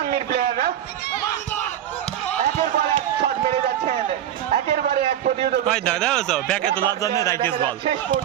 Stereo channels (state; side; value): quieter; left; 11.1 dB